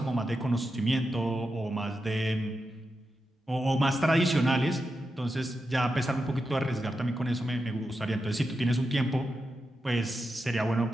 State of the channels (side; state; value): both; normal; correlation 0.88